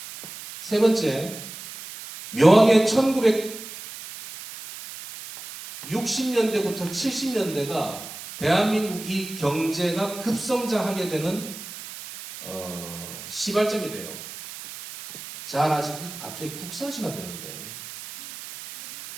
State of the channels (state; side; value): noise; right; hiss, 12 dB below the sound